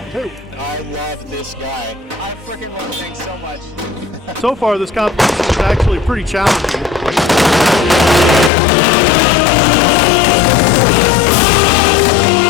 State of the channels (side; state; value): right; drops out; at 8.5 s